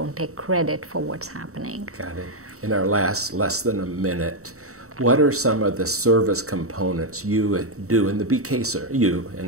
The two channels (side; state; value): left; late; 0.64 ms